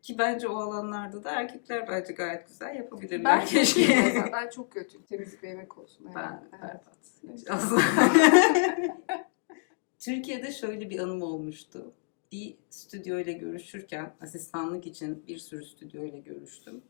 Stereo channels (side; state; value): right; silent; 58 dB below the other